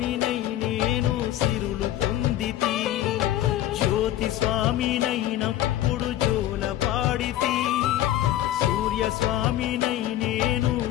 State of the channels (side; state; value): right; quieter; 13.4 dB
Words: నేను సిరులు పొందితి. జ్యోతి స్వామినైనప్పుడు జోల పాడితి, సూర్య స్వామినై నేను